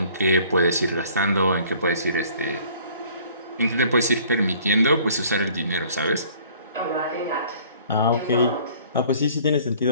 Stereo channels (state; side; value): inverted; both; correlation -0.54